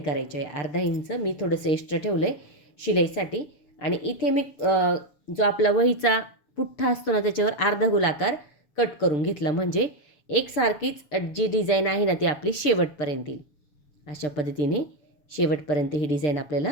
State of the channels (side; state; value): right; late; 6.8 ms